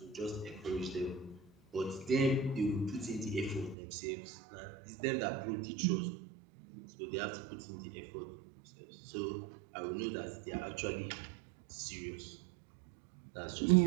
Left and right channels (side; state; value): left; drops out; at 3.8 s